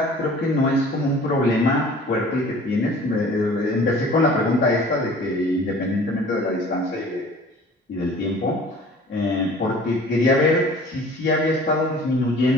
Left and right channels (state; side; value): normal; both; correlation 0.47